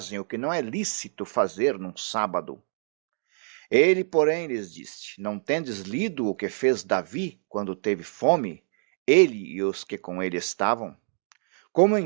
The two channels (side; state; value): left; silent; digital silence